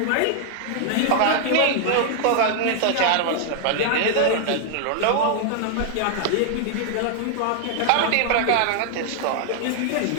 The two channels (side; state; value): both; different; correlation 0.00